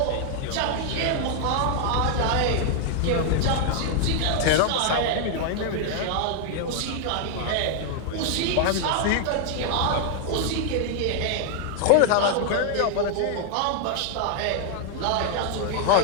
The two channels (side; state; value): both; different; correlation 0.00